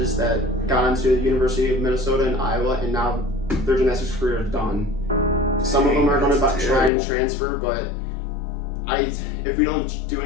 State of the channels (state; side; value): drops out; right; at 6.9 s